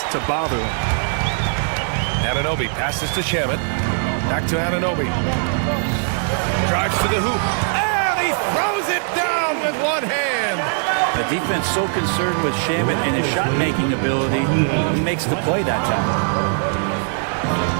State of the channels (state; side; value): silent; left; 58 dB below the other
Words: to bother him. Anunoby passes to Shamet. Back to Anunoby. Drives to the hoop. And he throws it down with one hand. The defense so concerned with Shamet and his shot-making ability, he makes the play that time.